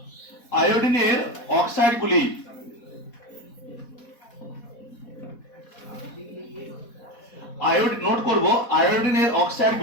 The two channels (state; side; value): late; right; 4.1 ms